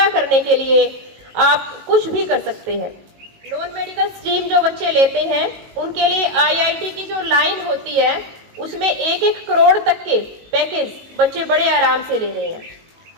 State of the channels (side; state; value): left; late; 19 ms